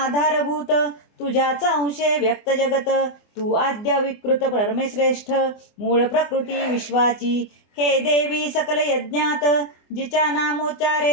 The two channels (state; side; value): late; right; 24 ms